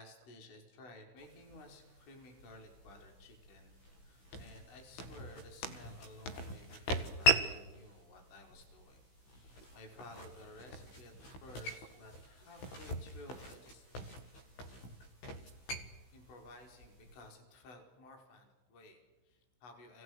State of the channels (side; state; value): right; late; 16 ms